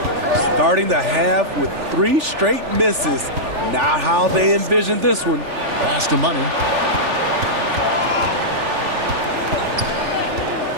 Starting the half with 3 straight misses. Not how they envisioned this one. Pass to Money.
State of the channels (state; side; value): late; left; 3.4 ms